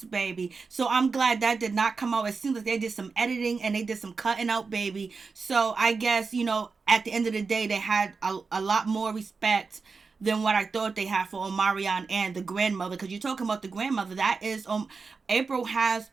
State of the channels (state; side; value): quieter; left; 4.6 dB